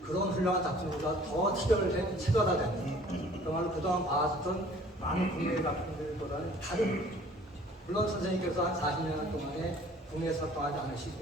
그런 훌륭한 작품보다 더 체별화된, 정말로 그동안 봐왔던 많은 국내 작품들보다는 다른, 물론 선생님께서 한 40년 동안에 국내에서 활동하지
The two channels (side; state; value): both; normal; correlation 0.53